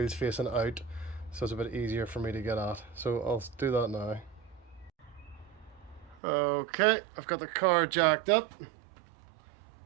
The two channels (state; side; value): drops out; left; at 6.2 s